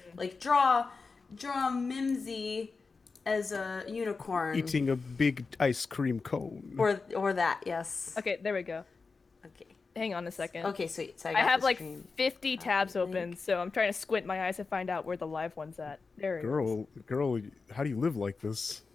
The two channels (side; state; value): right; quieter; 4.4 dB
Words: like draw Mimsy as a unicorn. Eating a big ice cream cone. Or that, yes. Okay, there we go. Okay. Hang on a second. Okay, sweet. So I have the like stream. 50 tabs open, so I'm trying to squint my eyes to find out where the live one's at. There it is. Girl, how do you live like this?